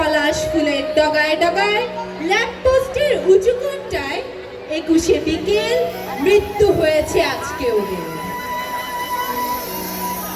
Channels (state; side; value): identical; both; correlation 1.00